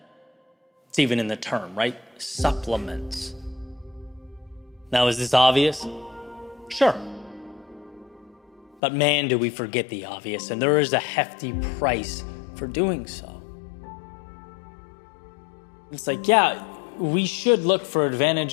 It's even in the term, right? Supplements. Now, is this obvious? Sure. But man, do we forget the obvious, and there is a hefty price for doing so. It's like, yeah, we should look for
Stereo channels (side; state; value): right; drops out; at 8.8 s